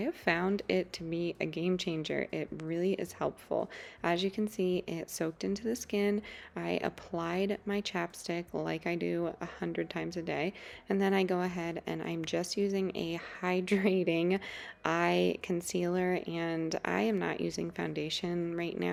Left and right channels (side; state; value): both; identical; correlation 1.00